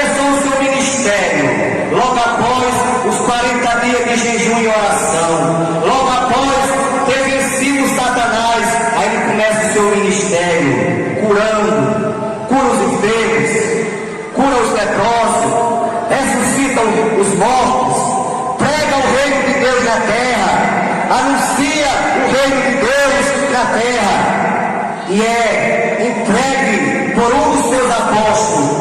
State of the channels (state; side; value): identical; both; correlation 1.00